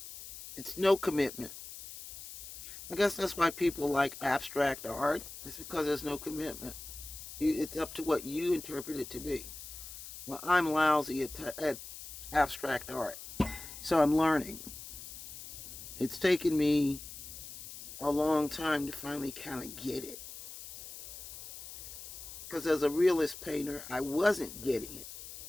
It's no commitment. I guess that's why people like abstract art. It's because there's no commitment. It's up to what you interpret it to be. Well, I'm lousy at abstract art. So I'm learning. It's taken me a long time to finally kind of get it. Because as a realist painter, I wasn't getting it.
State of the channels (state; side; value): noise; left; hiss, 12 dB below the sound